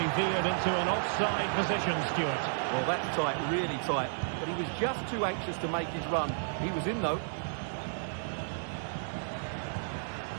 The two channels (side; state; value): left; silent; digital silence